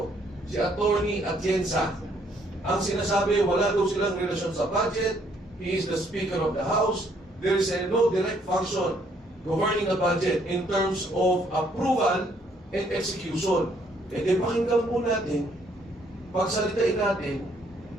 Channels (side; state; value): both; normal; correlation 0.67